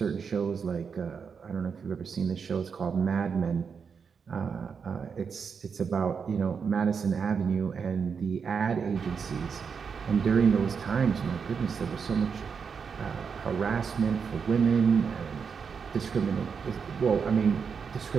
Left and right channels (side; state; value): left; quieter; 6.1 dB